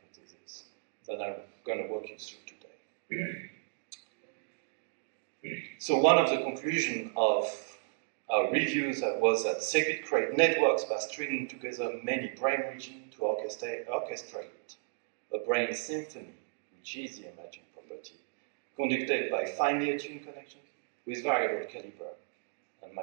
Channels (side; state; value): left; silent; digital silence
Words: that I'm going to walk you through today. So one of the conclusions of our reviews was that circuit create networks by stringing together many brain regions to orchestrate a brain symphony, which is the emerging property, conducted by finely attuned connections with variable caliber and